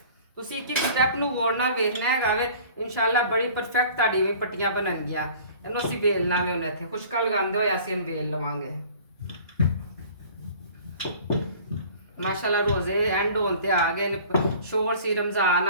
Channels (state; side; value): inverted; both; correlation -0.47